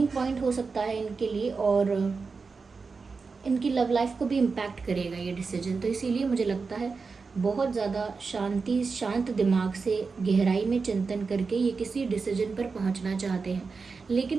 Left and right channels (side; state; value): left; quieter; 4.7 dB